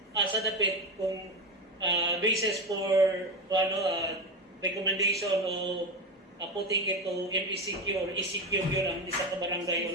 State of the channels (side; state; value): both; normal; correlation 0.17